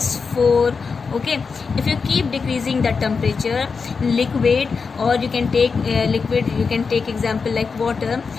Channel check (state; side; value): quieter; right; 5.1 dB